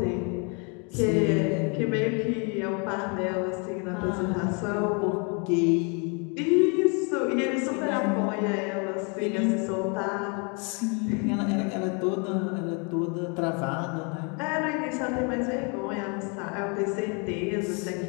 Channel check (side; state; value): right; quieter; 34.9 dB